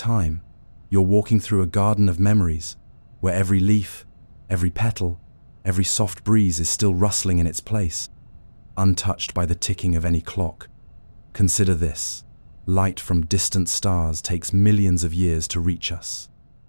You're walking through a garden of memories, where every leaf, every petal, every soft breeze is still rustling in its place, untouched by the ticking of any clock. Consider this. Light from distant stars takes millions of years to reach us.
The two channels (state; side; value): inverted; both; correlation -1.00